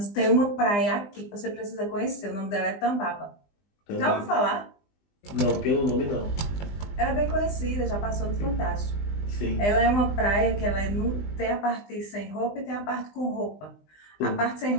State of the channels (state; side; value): late; right; 20 ms